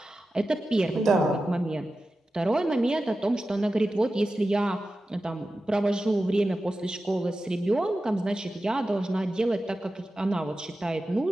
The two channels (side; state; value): both; normal; correlation 0.93